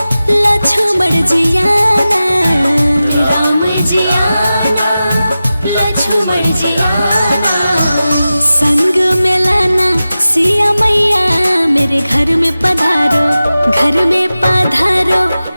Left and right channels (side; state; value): both; inverted; correlation -0.95